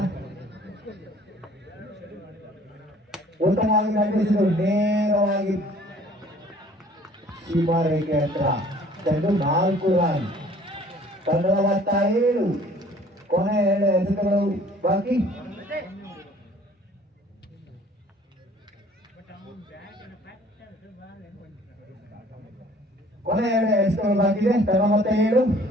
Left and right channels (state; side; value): normal; both; correlation 0.54